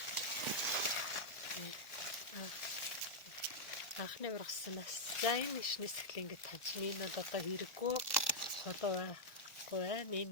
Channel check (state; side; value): late; right; 1.4 ms